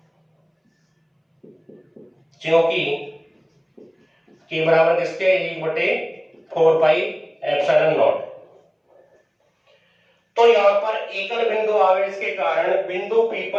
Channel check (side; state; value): both; identical; correlation 1.00